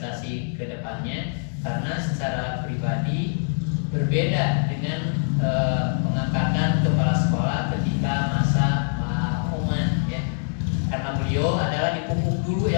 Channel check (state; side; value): silent; right; digital silence